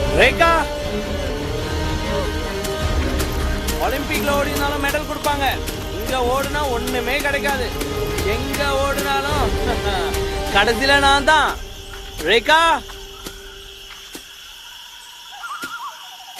ரேகா, ஒலிம்பிக்ல ஓடினாலும் மெடல் கொடுப்பாங்க, இங்க ஓடுனா ஒண்ணுமே கிடைக்காது. எங்க ஓடுனாலும் கடைசியில நான் தான். ரேகா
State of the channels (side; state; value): both; identical; correlation 1.00